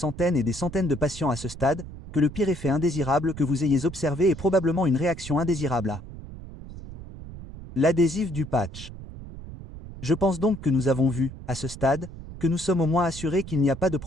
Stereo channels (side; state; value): right; noise; rumble, 13 dB below the sound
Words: et des centaines de patients à ce stade, que le pire effet indésirable que vous ayez observé est probablement une réaction indésirable à l'adhésif du patch. Je pense donc que nous avons vu, à ce stade, que nous sommes au moins assurés qu'il n'y a pas de